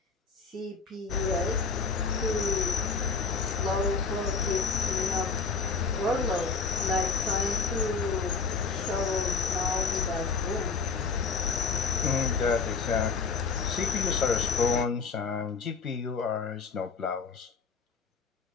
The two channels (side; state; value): right; quieter; 4.8 dB